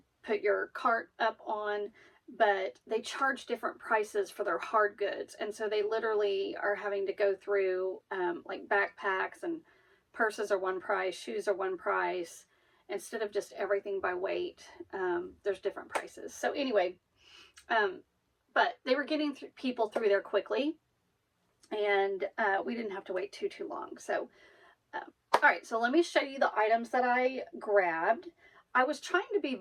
put your cart up on, but they charge different prices for their hard goods. And so they literally are having to go through like backpacks and purses are one price, shoes are one price. Instead of just everything by weight, there's different prices. So anyway, but they were getting people through there quickly, and we didn't have to wait too long. So, all right, so let me show you the items that I grabbed. I was trying to be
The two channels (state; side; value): identical; both; correlation 1.00